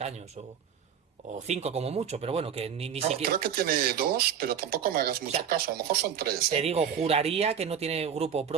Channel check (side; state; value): left; quieter; 8.1 dB